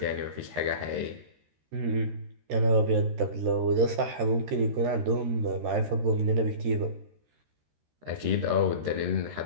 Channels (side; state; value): left; late; 13 ms